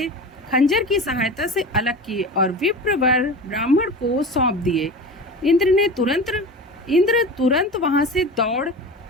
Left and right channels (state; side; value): normal; both; correlation 0.31